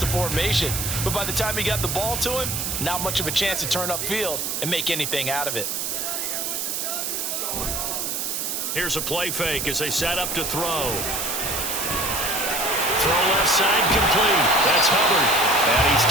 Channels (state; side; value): noise; right; hiss, 2 dB below the sound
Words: the formation. But by the time he got the ball to him, not much of a chance to turn upfield and make anything out of it. Here's a play fake as they set up to throw. Throw left side complete. That's Hubbard. And he's